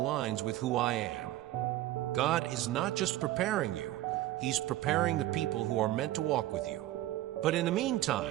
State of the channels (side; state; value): left; quieter; 15.3 dB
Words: with who I am. God is not just preparing you, He's preparing the people who are meant to walk with you. But in the